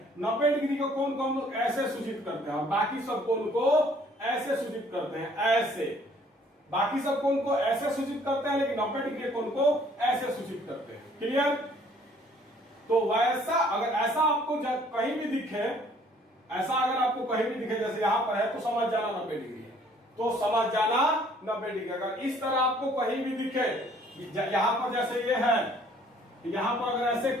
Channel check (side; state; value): both; normal; correlation 0.59